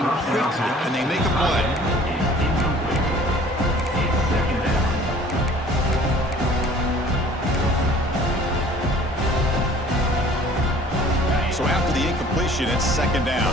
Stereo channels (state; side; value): normal; both; correlation 0.51